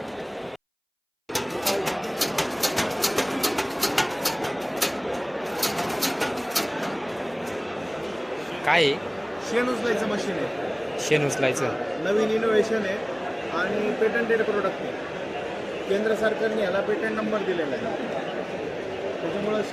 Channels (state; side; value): identical; both; correlation 1.00